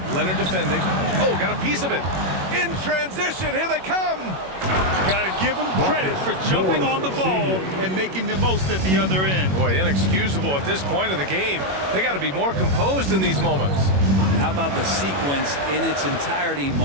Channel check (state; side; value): late; left; 21 ms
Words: Leonard defending. Oh, got a piece of it. In transition, here they come. Got to give him credit for jumping on the ball and making the most at the other end. Boy, inexcusable at this point in the game. They got to be more composed in these moments. How about the sequence in its entirety?